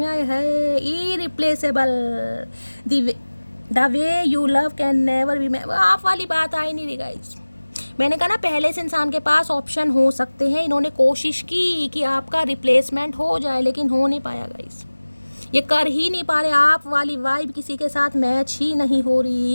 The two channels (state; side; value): inverted; both; correlation -1.00